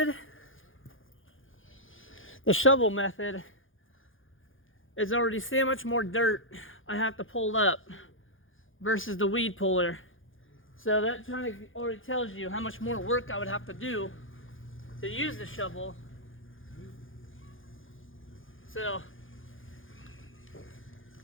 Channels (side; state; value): right; late; 0.58 ms